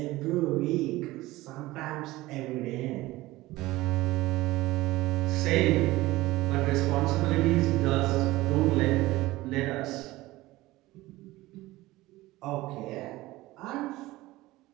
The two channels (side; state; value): left; quieter; 18.4 dB